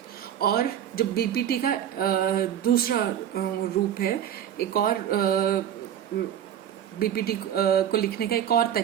और जो BPT का दूसरा रूप है, एक और बीपीटी को लिखने का एक और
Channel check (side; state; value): left; quieter; 9.9 dB